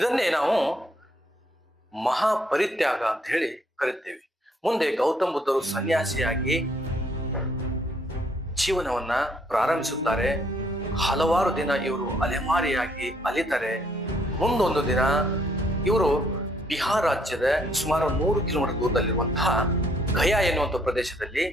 ನಾವು ಮಹಾಪರಿತ್ಯಾಗ ಅಂತ ಹೇಳಿ ಕರಿತೇವೆ. ಮುಂದೆ ಗೌತಮ್ ಬುದ್ಧರು ಸನ್ಯಾಸಿಯಾಗಿ ಜೀವನವನ್ನ ಪ್ರಾರಂಭಿಸುತ್ತಾರೆ. ಹಲವಾರು ದಿನ ಇವರು ಅಲೆಮಾರಿಯಾಗಿ ಅಲಿತಾರೆ. ಮುಂದೊಂದು ದಿನ ಇವರು ಬಿಹಾರ್ ರಾಜ್ಯದ ಸುಮಾರು 100 ಕಿಲೋಮೀಟರ್ ದೂರದಲ್ಲಿರುವಂತಹ ಗಯಾ ಎನ್ನುವಂಥ ಪ್ರದೇಶದಲ್ಲಿ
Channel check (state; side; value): normal; both; correlation 0.68